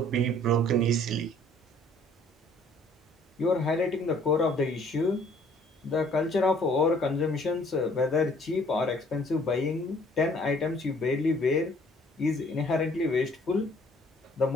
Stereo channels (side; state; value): both; normal; correlation 0.58